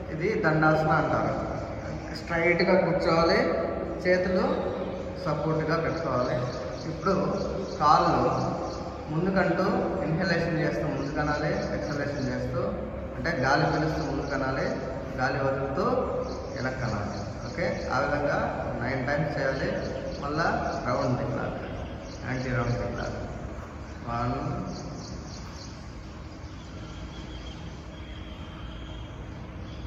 ఇది దండాసన అంటారు. స్ట్రైట్గా కూర్చోవాలి, చేతులు సపోర్ట్గా పెట్టుకోవాలి. ఇప్పుడు కాళ్ళు ముందుకంటూ ఇన్హలేషన్ చేస్తూ ముందు కనాలి, ఎక్సలేషన్ చేస్తూ అంటే గాలి పీలుస్తూ ముందు కనాలి, గాలి వదులుతూ వెనక్కి కనాలి. ఓకే, ఆ విధంగా 9 టైమ్స్ చేయాలి. మళ్ళా రౌండ్ తిప్పాలి, యాంటీ రౌండ్ తిప్పాలి. 1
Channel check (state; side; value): identical; both; correlation 1.00